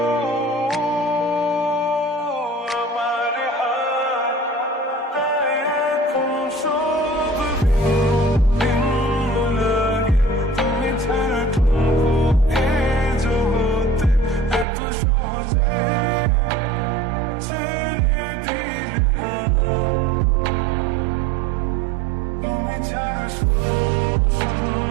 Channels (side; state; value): left; drops out; at 14.7 s